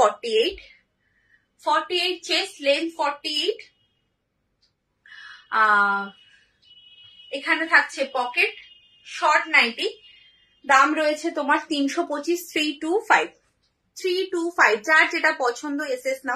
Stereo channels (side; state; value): both; identical; correlation 1.00